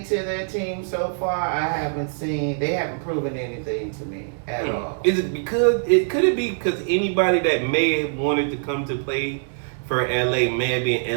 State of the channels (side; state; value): left; silent; 62 dB below the other